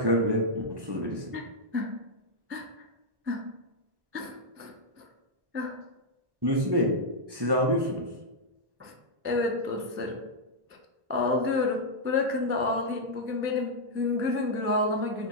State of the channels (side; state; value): left; late; 1.1 ms